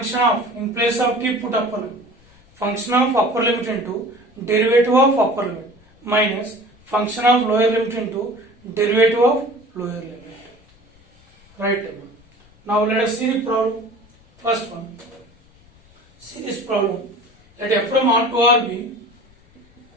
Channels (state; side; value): noise; left; rumble, 29 dB below the sound